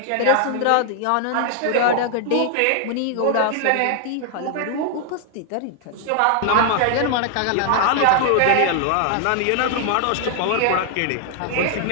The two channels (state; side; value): different; both; correlation 0.00